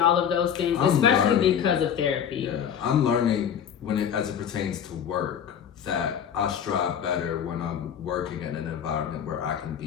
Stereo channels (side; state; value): right; quieter; 8.5 dB